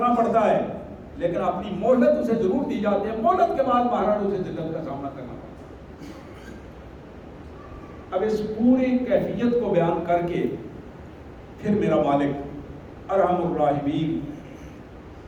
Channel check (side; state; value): both; identical; correlation 1.00